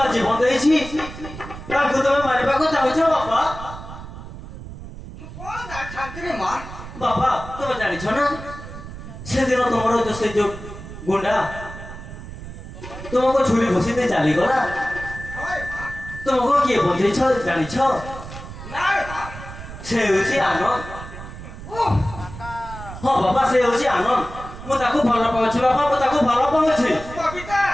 ଜୀବନ ଦେଇଛି ତାକୁ ତମେ ମାରିବାକୁ ଚାହୁଁଛ ବାପା ମୁଁ କଣ ଜାଣିଥାନ୍ତି ରେ ମା। ବାପା ତମେ ଜାଣିଛ ନା ସେଦିନ ତମର ସେ ଯୋଉ ଗୁଣ୍ଡା ତୁମକୁ ଛୁରୀ ଘୋଷି ଦେଇ ଚାଲିଗଲା ହଏ ମା। ତୁମକୁ କିଏ ବଞ୍ଚେଇଛ ଜାଣିଛ ନା ରେ ମା। ସେ ହେଉଛି ଆନନ୍ଦ ଓଃ, ହଁ ବାପା ସେ ହେଉଛି ଆନନ୍ଦ ମୁଁ ତାକୁ ଭଲ ପାଉଛି ବାପା ମୁଁ ତାକୁ ଭଲ ପାଉଛି କବିତା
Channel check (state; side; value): noise; right; rumble, 12 dB below the sound